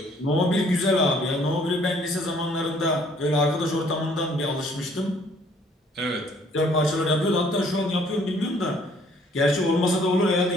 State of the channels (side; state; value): both; normal; correlation 0.61